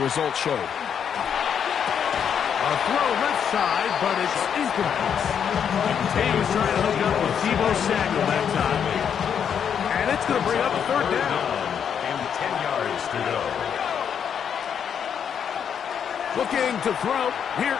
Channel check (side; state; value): right; quieter; 7.9 dB